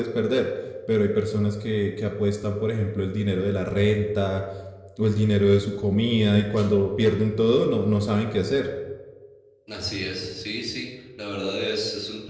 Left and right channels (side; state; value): both; identical; correlation 1.00